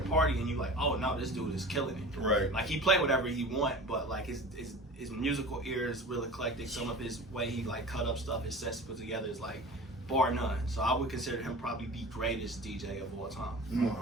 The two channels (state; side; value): normal; both; correlation 0.37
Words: and you like, oh no, this dude is killing it. Right. Like he play whatever he want, but like his musical ear is real eclectic. Some of his way he like cut up stuff, his sets put together is like bar none. So I would consider him probably the greatest DJ of all time. I